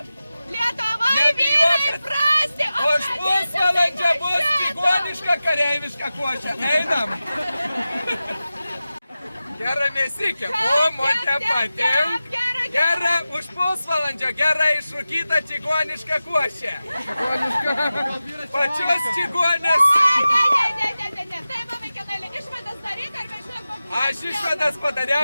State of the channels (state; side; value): inverted; both; correlation -0.95